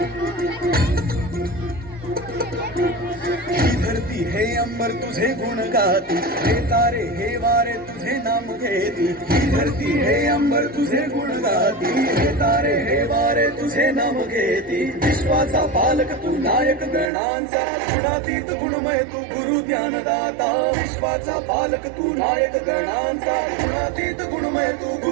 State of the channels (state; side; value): drops out; left; at 17.1 s